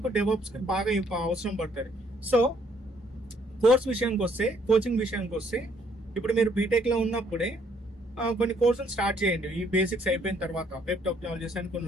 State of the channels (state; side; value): normal; both; correlation 0.66